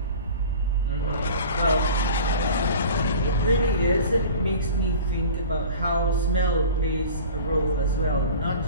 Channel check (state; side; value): inverted; both; correlation -0.41